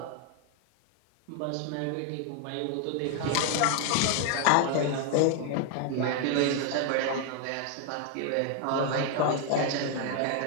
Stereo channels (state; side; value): different; both; correlation 0.00